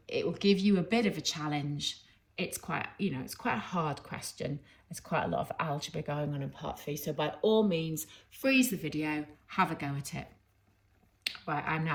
It will give you a bit of a challenge. It's quite a hard question. There's quite a lot of algebra going on in part 3. So by all means, freeze the video, have a go at it. Right, I'm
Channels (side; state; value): both; identical; correlation 1.00